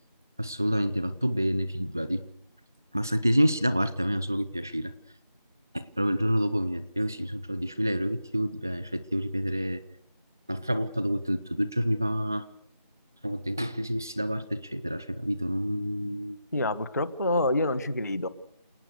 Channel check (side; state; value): both; inverted; correlation -0.91